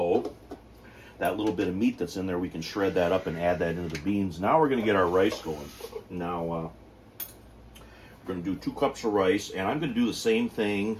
That little bit of meat that's in there, we can shred that up and add that into the beans. Now we're going to get our rice going. Now we're going to do 2 cups of rice, and I'm going to do the same thing.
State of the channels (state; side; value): identical; both; correlation 1.00